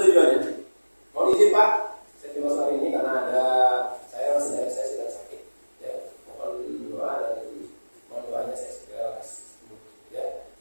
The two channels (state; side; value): inverted; both; correlation -1.00